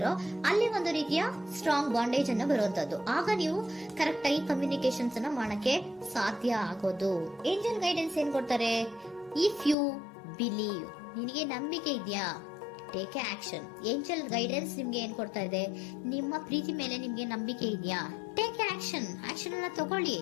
ಅಲ್ಲಿ ಒಂದು ರೀತಿಯ ಸ್ಟ್ರಾಂಗ್ ಬಾಂಡೇಜ್ ಅನ್ನ ಬರುವಂತದ್ದು. ಆಗ ನೀವು ಕರೆಕ್ಟ್ ಆಗಿ ಕಮ್ಯುನಿಕೇಶನ್ಸ್ ಅನ್ನ ಮಾಡಕ್ಕೆ ಸಾಧ್ಯ ಆಗೋದು. ಏಂಜಲ್ ಗೈಡೆನ್ಸ್ ಏನ್ ಕೊಡ್ತಾರೆ, ಇಫ್ ಯು ಬಿಲೀವ್, ನಿನಗೆ ನಂಬಿಕೆ ಇದೆಯಾ, ಟೇಕ್ ಆಕ್ಷನ್. ಏಂಜಲ್ ಗೈಡೆನ್ಸ್ ನಿಮ್ಗೆ ಏನ್ ಕೊಡ್ತಾ ಇದೆ, ನಿಮ್ಮ ಪ್ರೀತಿ ಮೇಲೆ ನಿಮ್ಗೆ ನಂಬಿಕೆ ಇದೆಯಾ, ಟೇಕ್ ಆಕ್ಷನ್. ಆಕ್ಷನ್ ಅನ್ನ ತಗೊಳ್ಳಿ,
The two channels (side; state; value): right; drops out; at 9.8 s